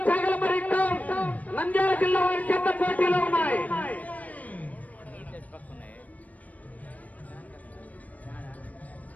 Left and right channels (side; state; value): right; late; 0.072 ms